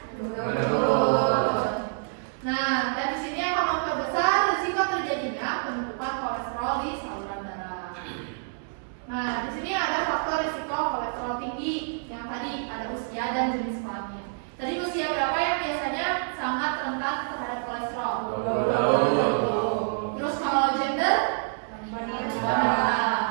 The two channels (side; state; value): left; silent; digital silence